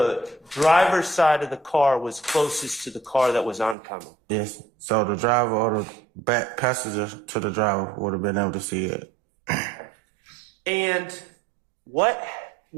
driver's side of the car was closest to the car that was oncoming. Yes. So the driver or the back passenger to the driver would have been able to see it. And what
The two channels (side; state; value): left; drops out; at 3.8 s